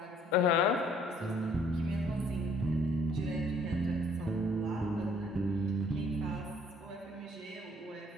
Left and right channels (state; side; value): normal; both; correlation 0.61